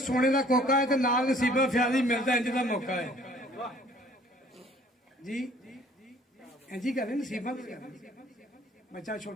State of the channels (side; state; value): both; normal; correlation 0.56